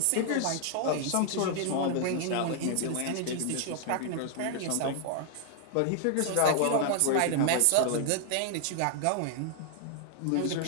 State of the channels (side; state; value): both; different; correlation -0.01